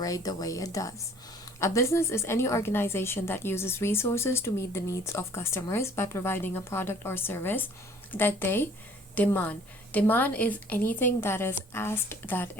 the way it does. A business is any organization that uses resources to meet the needs of customers by providing a product or service that they demand. Demand is anything that is asked, that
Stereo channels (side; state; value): both; normal; correlation 0.55